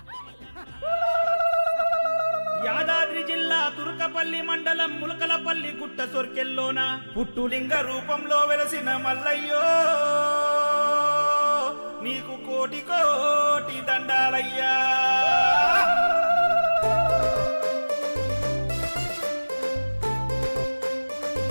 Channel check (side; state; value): both; inverted; correlation -1.00